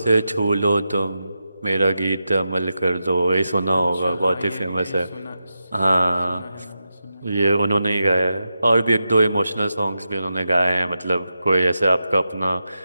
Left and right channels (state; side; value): inverted; both; correlation -0.89